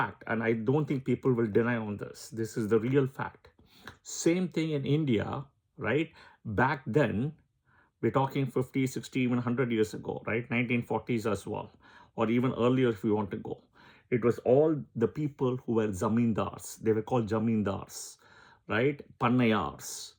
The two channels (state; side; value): identical; both; correlation 1.00